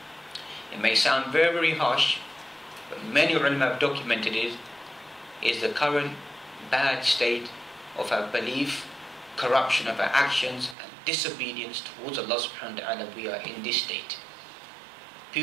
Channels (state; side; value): drops out; left; at 10.8 s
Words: it may sound very, very harsh, but many ulama have documented it, is the current bad state of our belief, corruption of our actions, and disobedience towards Allah subhanahu wa ta'ala. We are in this state.